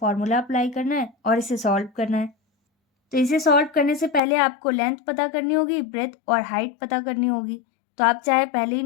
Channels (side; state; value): right; drops out; at 4.2 s